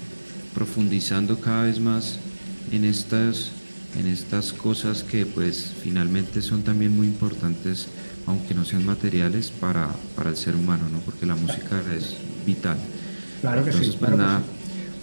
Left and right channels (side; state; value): both; inverted; correlation -1.00